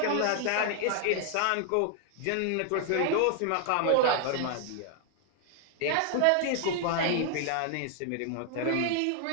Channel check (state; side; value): different; both; correlation 0.00